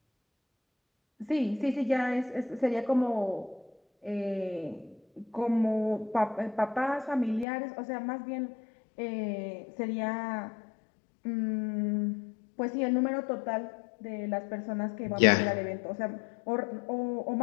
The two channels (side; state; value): right; drops out; at 7.5 s